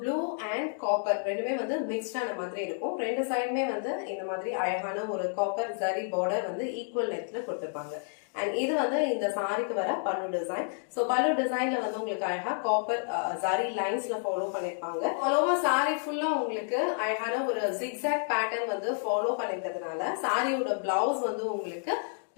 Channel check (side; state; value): right; silent; 58 dB below the other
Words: blue and copper ரெண்டுமே வந்து மிக்ஸ்டான மாதிரி இருக்கும். ரெண்டு சைடுமே வந்து இந்த மாதிரி அழகான ஒரு காப்பர் ஜரி பார்டர் வந்து ஈக்குவல் லென்த்ல கொடுத்திருப்பாங்க. அண்ட் இது வந்து இந்த சாரிக்கு வர பல்லு டிசைன். சோ பல்லு டிசைன்ல வந்து உங்களுக்கு அழகா காப்பர் ஜரி லைன்ஸ்ல ஃபாலோ பண்ணிருப்பாங்க. ஃபாலோவா சாரி ஃபுல்லா உங்களுக்கு அழகான ஒரு ஜிக்ஸாக் பேட்டர்ன் வந்து ஃபாலோ பண்ணிருக்கிறதுனால சாரியோட பிளவுஸ் வந்து உங்களுக்கு